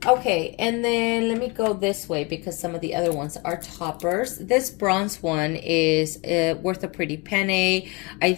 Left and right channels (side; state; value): right; quieter; 28.1 dB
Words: Okay, and then let me go this way because some of the other ones are toppers. This bronze one is worth a pretty penny. I